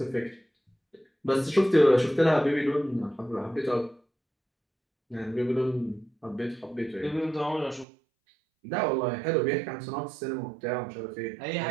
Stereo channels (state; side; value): drops out; left; at 7.9 s